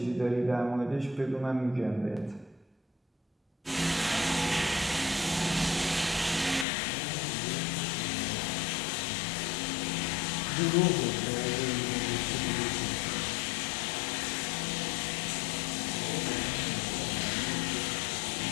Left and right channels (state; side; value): drops out; right; at 6.7 s